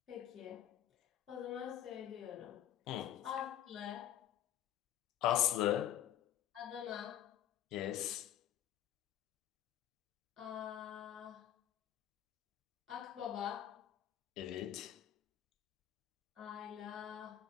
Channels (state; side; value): quieter; right; 11.4 dB